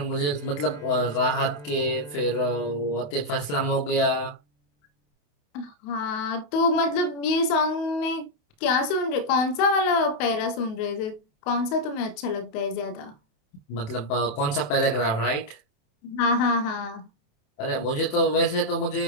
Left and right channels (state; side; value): late; right; 27 ms